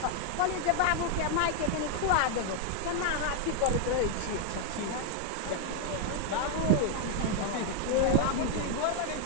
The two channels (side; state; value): both; different; correlation 0.00